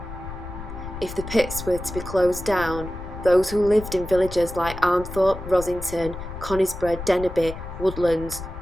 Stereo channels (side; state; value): left; noise; rumble, 10 dB below the sound